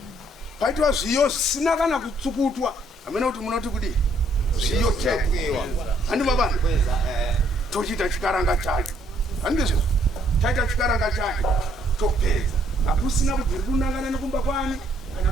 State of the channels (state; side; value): normal; both; correlation 0.68